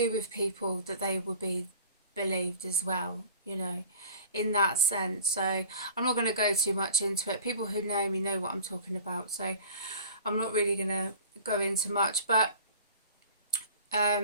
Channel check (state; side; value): inverted; both; correlation -0.44